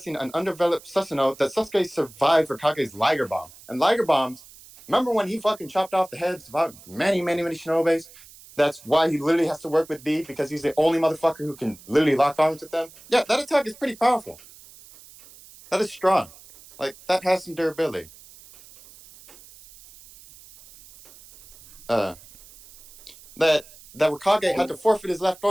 an undeveloped Susanoo that Sasuke survived Raikage's Liger Bomb. And Liger Bombs, remember when he fucking chopped off the heads of many shinobis? That's why he literally has to work with B, because he's the only motherfucker who can literally lock arms with them. Yeah, that attack is pretty powerful. That is strong. Like, that has some durability. That Kage had to forfeit his left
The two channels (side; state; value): right; noise; hiss, 21 dB below the sound